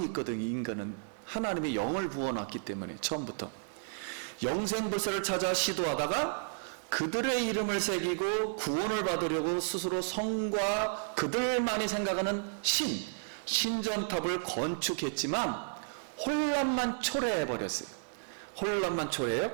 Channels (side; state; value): left; silent; digital silence